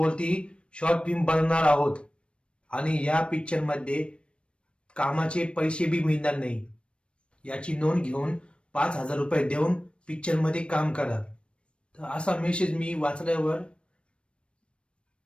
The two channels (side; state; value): right; late; 0.058 ms